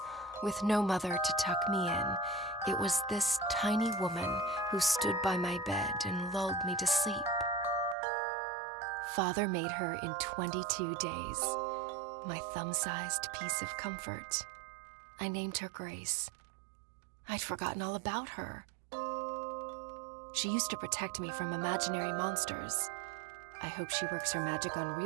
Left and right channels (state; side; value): drops out; left; at 8.0 s